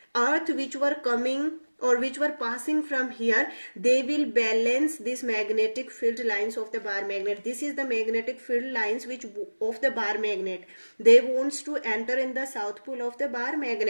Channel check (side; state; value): both; inverted; correlation -1.00